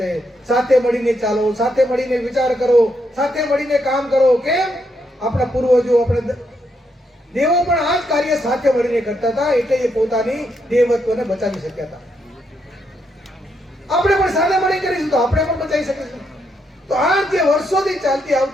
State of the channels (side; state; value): both; normal; correlation 0.79